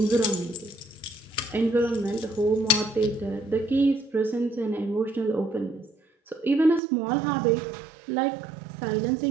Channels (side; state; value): left; drops out; at 6.8 s